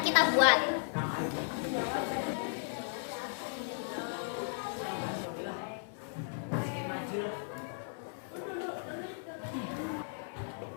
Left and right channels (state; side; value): silent; right; 54 dB below the other